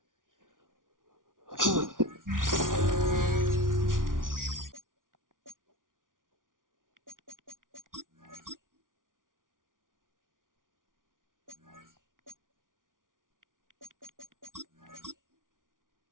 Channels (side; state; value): left; late; 0.88 ms